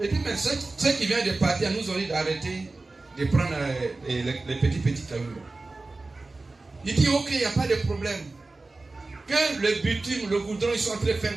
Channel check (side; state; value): left; quieter; 3.4 dB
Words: dit, mais ceux qui viennent de partir nous ont dit d'arrêter de prendre les petits cailloux. Il dit, ok, il n'y a pas de problème. Que le bitume, le goudron, ils sont en train de faire